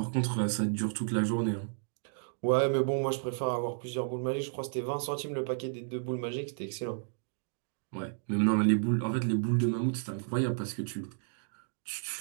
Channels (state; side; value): silent; left; digital silence